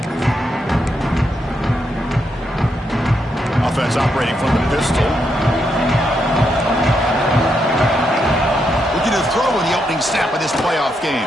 Offense operating from the pistol. Looking to throw in the opening snap of this playoff game.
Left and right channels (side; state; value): both; normal; correlation 0.80